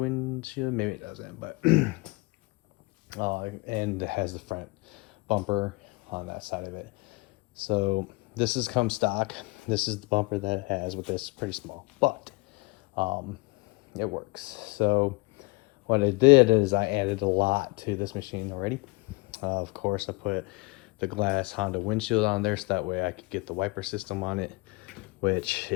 maybe it doesn't, but and it has the front bumper on that side of it. So this is come stock. This is the bumper that it has with this, pretty small, but it works. So what I did is I added a lot to this machine already. Of course, I put the glass Honda windshield on there so that way I could get the wiper system on it, which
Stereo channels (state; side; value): quieter; right; 26.4 dB